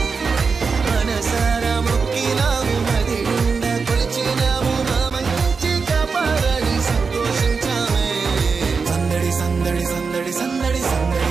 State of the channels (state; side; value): quieter; left; 5.0 dB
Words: మనసారా మృక్కినాము మది నిండా కొలచినాము మా మంచి కాపాడని సంతోషించామే సందడి సందడి సందడి సందడి సందడి